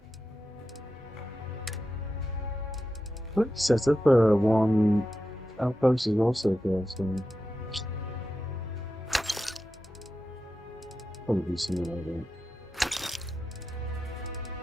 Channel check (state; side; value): normal; both; correlation 0.90